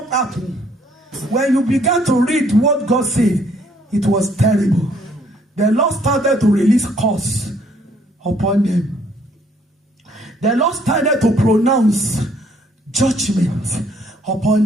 happened? When you began to read what God said, it was terrible. The Lord started to release curse upon them. The Lord started to pronounce judgment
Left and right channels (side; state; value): both; normal; correlation 0.65